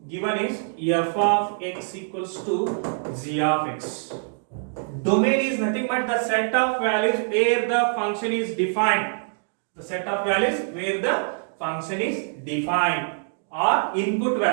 f of x equals to g of x. Domain is nothing but the set of values where the function is defined. The set of values where the function is defined, or input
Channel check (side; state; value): left; silent; digital silence